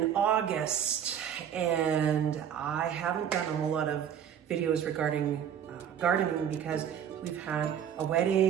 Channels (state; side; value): quieter; left; 9.0 dB